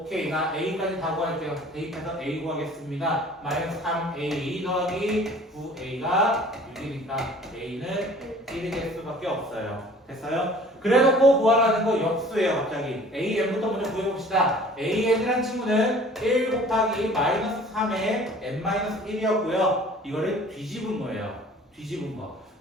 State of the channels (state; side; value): normal; both; correlation 0.49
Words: 나 A까지 다 구할게요. 대입해서 A 구하겠습니다. 마이너스 3A 더하기 9A가 6이니까 A는 1이 될 수밖에 없어요. 됐어요? 그래놓고 구하라는 거 역수예요. 갑자기 AN부터 먼저 구해봅시다. AN이라는 친구는 1 곱하기 마이너스 3의 n-1이었고요. 이거를 뒤집은 거예요. 뒤집은 거.